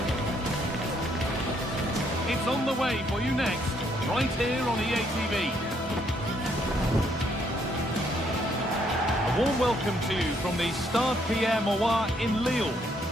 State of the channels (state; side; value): normal; both; correlation 0.70